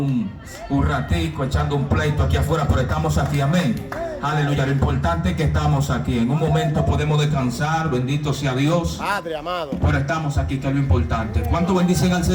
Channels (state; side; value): identical; both; correlation 1.00